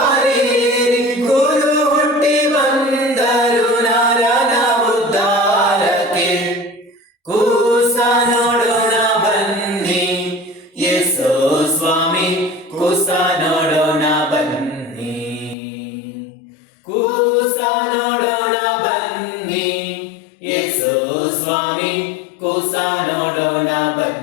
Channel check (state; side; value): drops out; right; at 15.6 s